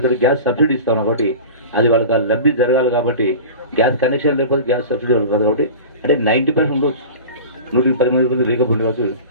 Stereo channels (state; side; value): inverted; both; correlation -0.35